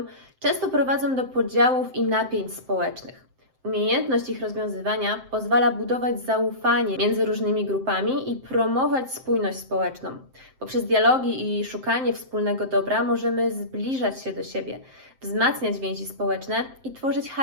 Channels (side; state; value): left; late; 7.7 ms